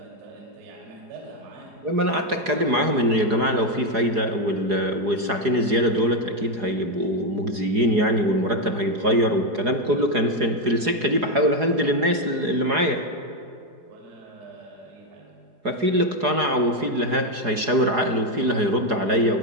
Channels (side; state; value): left; late; 4.8 ms